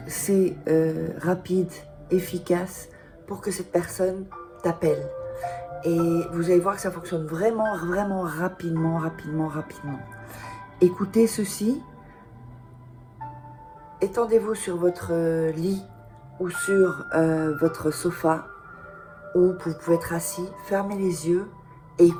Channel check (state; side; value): identical; both; correlation 1.00